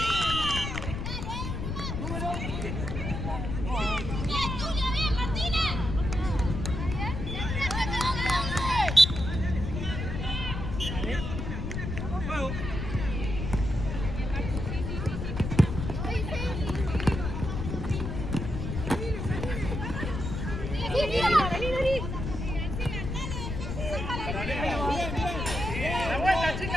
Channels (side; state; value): left; noise; rumble, 4 dB below the sound